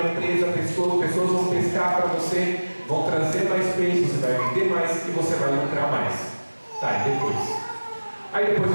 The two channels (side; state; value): both; inverted; correlation -1.00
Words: pessoas vão pescar para você, vão trazer mais peixes, você vai vender mais e você vai lucrar mais. E depois? Aí depois